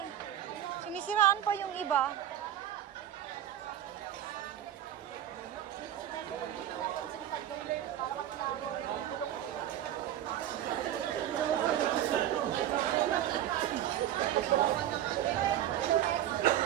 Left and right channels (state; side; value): quieter; left; 11.8 dB